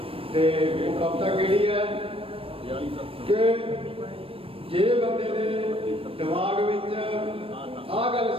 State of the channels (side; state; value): left; late; 0.27 ms